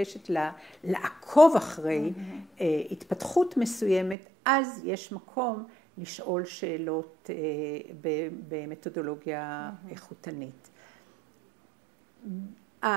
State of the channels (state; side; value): drops out; left; at 4.2 s